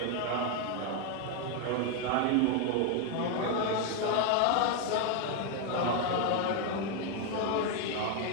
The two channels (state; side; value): different; both; correlation 0.01